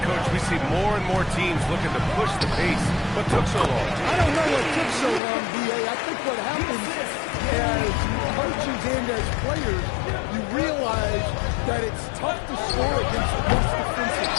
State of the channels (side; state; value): right; drops out; at 5.2 s